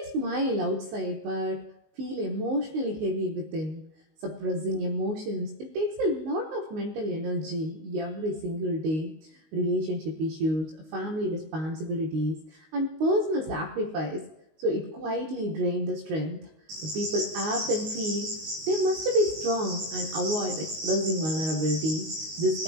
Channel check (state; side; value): late; left; 19 ms